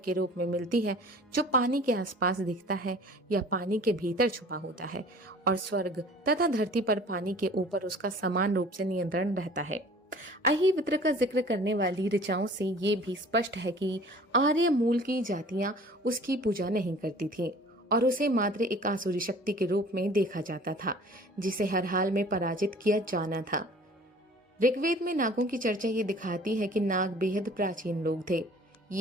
के रूप में मिलती है जो पानी के आसपास दिखता है या पानी के भीतर छुपा होता है और स्वर्ग तथा धरती पर पानी के ऊपर उसका समान रूप से नियंत्रण रहता है। अहिवित्र का जिक्र करने वाली ऋचाओं से ये भी स्पष्ट है कि आर्य मूल की जातियां उसकी पूजा नहीं करती थी और उसे मात्र एक आसुरी शक्ति के रूप में देखा जाता था, जिसे हर हाल में पराजित किया जाना था। ऋग्वेद में नागों की चर्चा ये दिखाती है कि नाग बेहद प्राचीन लोग थे।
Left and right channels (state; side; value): normal; both; correlation 0.48